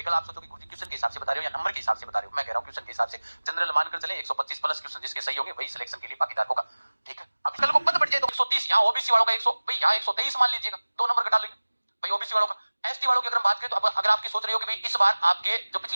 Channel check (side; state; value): both; inverted; correlation -1.00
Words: कल आप सोचो कि गुरुजी क्वेश्चन के हिसाब से बता रहे हो या नंबर के हिसाब से बता रहे हो, मैं कह रहा हूं क्वेश्चन के हिसाब से। जनरल मानकर चले 125 प्लस क्वेश्चन जिसके सही होंगे वही सिलेक्शन के लिए भागीदार होगा, ठीक है। अब कल को पद बढ़ जाए तो 130, यहाँ ओबीसी वालों का 100, भाई यहाँ 123 मान लीजिएगा, 2 नंबर घटा लेंगे भाई ओबीसी वालों का। एसटी वालों की अगर हम बात करें तो अब अगर आपकी सोच रही हो कि भाई इस बार आपके जो